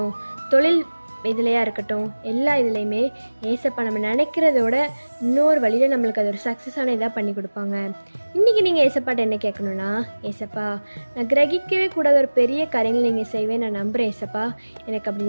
தொழில் இதுலையா இருக்கட்டும், எல்லா இதுலேயுமே ஏசப்பா நம்ம நினைக்கிறதோட இன்னொரு வழியில் நம்மளுக்கு அது ஒரு சக்ஸஸான இதாக பண்ணி கொடுப்பாங்க. இன்றைக்கி நீங்கள் ஏசப்பாட்ட என்ன கேட்கணுன்னா, ஏசப்பா நான் கிரகிக்கவே கூடாத ஒரு பெரிய காரியங்கள் நீங்கள் செய்வேன், நான் நம்புகிறேன் ஏசப்பா, எனக்கு அப்படி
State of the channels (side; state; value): both; inverted; correlation -1.00